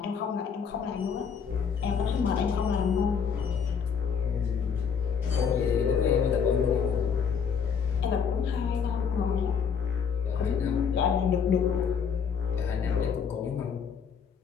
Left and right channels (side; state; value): right; quieter; 6.6 dB